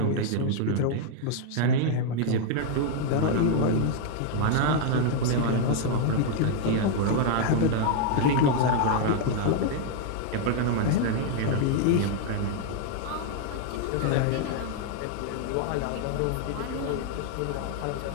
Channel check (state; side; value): different; both; correlation 0.00